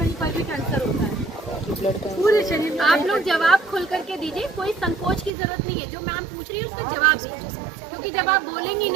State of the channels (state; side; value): drops out; left; at 5.3 s